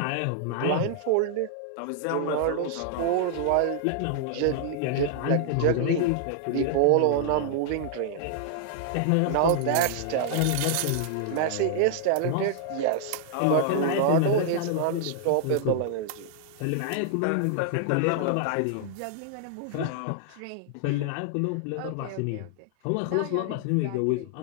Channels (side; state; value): both; different; correlation -0.01